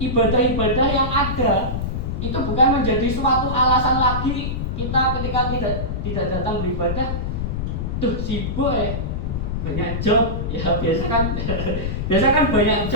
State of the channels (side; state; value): left; noise; rumble, 2 dB below the sound